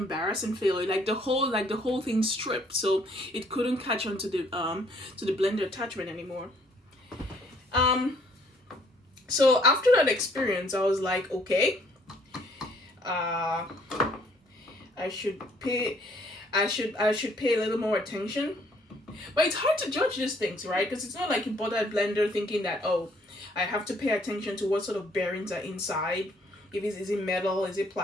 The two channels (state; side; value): normal; both; correlation 0.63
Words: failure. Like the whole thing stripped, so it couldn't catch on to the blender attachment anymore. So after that experience, I was like, okay, I should pay a little more attention. But it's hard to judge these things, right? Because it's not like you bought that blender thinking that, oh, I have to pay attention to what sort of bearings are inside. Is it metal? Is it